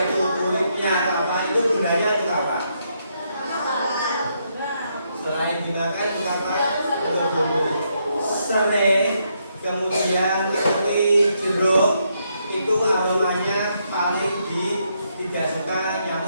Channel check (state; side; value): inverted; both; correlation -0.77